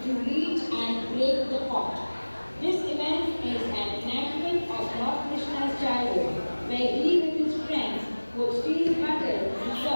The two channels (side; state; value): both; inverted; correlation -1.00